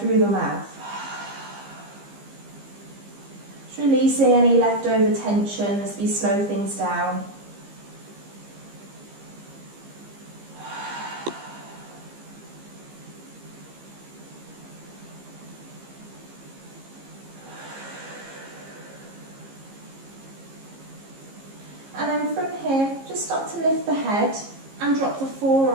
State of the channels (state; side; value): late; left; 15 ms